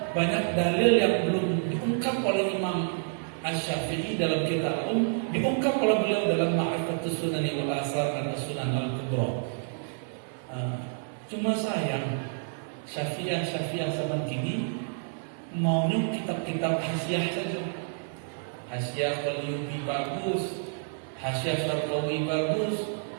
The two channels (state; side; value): silent; left; digital silence